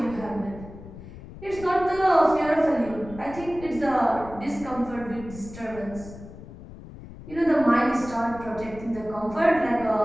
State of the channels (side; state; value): left; noise; rumble, 15 dB below the sound